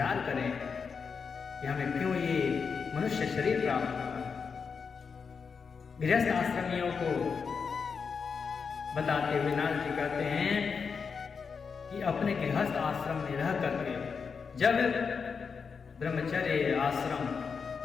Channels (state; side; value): quieter; right; 5.7 dB